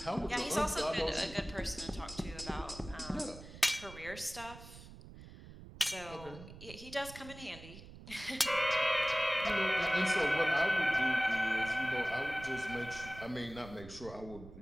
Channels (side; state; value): right; noise; rumble, 16 dB below the sound